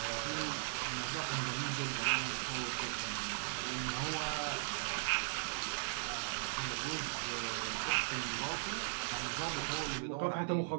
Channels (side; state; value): left; silent; 52 dB below the other